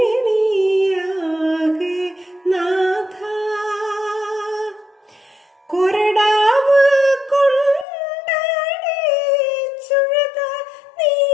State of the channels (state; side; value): drops out; right; at 7.9 s